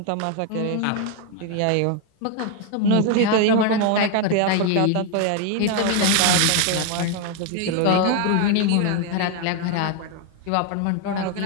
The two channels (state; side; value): different; both; correlation 0.01